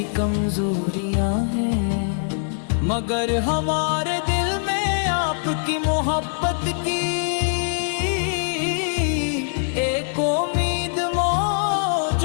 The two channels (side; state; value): right; silent; digital silence